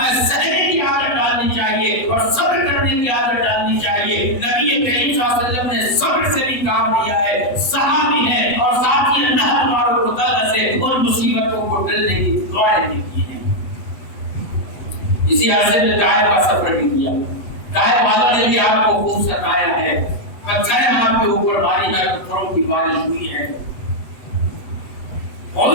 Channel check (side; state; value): right; late; 7.9 ms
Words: سہنے کی عادت ڈالنی چاہیے اور صبر کرنے کی عادت ڈالنی چاہیے۔ نبی کریم صلی اللہ علیہ وسلم نے صبر سے بھی کام لیا ہے، صحابی ہے اور ساتھ ہی اللہ تبارک و تعالیٰ سے ان مصیبتوں کو ٹلنے کی دعائیں بھی کی ہیں۔ اسی عرصے میں طائف کا سفر بھی کیا، طائف والوں نے بھی آپ کو خوب ستایا ہے، پتھر آپ کے اوپر باری ہے، پتھروں کی بارش ہوئی ہے،